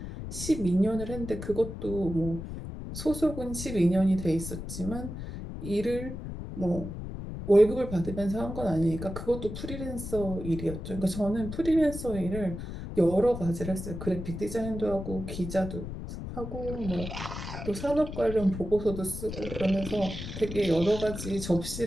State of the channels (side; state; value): left; noise; rumble, 8 dB below the sound